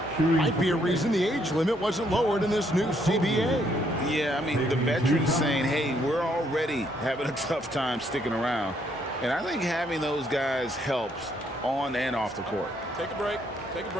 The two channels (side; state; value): both; normal; correlation 0.71